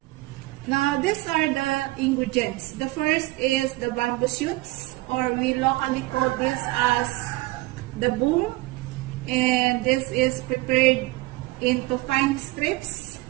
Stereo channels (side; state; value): left; quieter; 20.8 dB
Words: Now, these are the ingredients. The first is the bamboo shoots, or we locally call this as the boom. And this is prepared into fine strips.